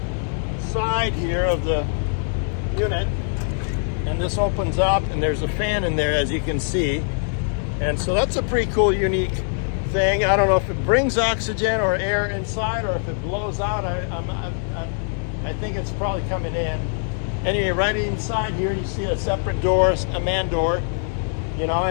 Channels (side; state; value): right; silent; digital silence